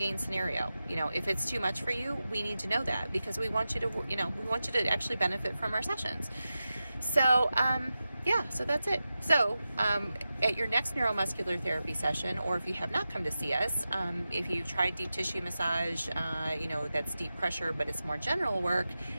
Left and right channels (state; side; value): inverted; both; correlation -0.93